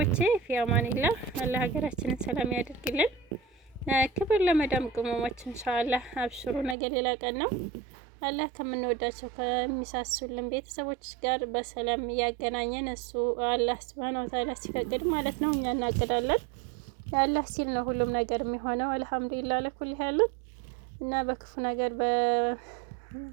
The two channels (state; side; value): drops out; left; at 6.8 s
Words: ፊያማኒላህ አላህ ሀገራችንን ሰላም ያደርግልን። ክብር ለመዳም ቅመሞች ኢንሻአላህ አብሽሩ። ነገ ሌላ ቀን ነው። አላህ ከምንወዳቸው ከሚሳሱልን ቤተሰቦች ጋር በሰላም እያገናኘን እሱ አላህ ሱብሃነሁ ወተዓላ ሲፈቅድ ማለት ነው። እኛ እናቅዳለን። አላህ ሲል ነው ሁሉም ነገር የሚሆነው። አልሐምዱሊላህ ለኩል ያሉን እና በክፉ ነገር በመርዶ